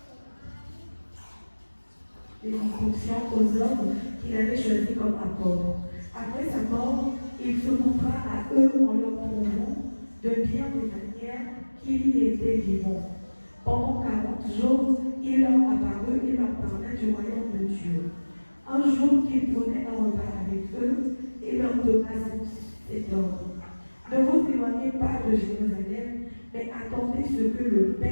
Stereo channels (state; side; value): inverted; both; correlation -1.00